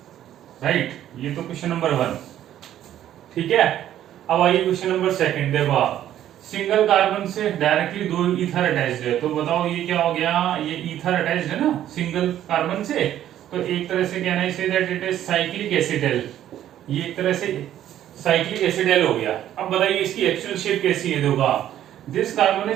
राइट। ये तो क्वेश्चन नंबर 1, ठीक है। अब आइए क्वेश्चन नंबर 2। देखो आप सिंगल कार्बन से डायरेक्टली 2 ईथर अटैच्ड है, तो बताओ ये क्या हो गया? ये ईथर अटैच्ड है ना सिंगल कार्बन से, तो एक तरह से कहना है that it is cyclic acetal. ये एक तरह से साइक्लिक एसिडल हो गया। अब बताइए इसकी एक्चुअल शेप कैसी है? देखो This carbon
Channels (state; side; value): quieter; left; 11.7 dB